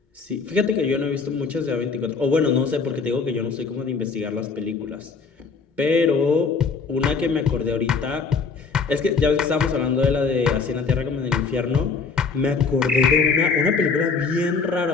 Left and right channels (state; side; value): quieter; right; 5.0 dB